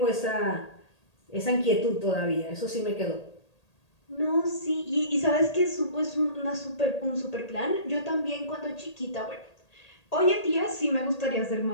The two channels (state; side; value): late; right; 1.8 ms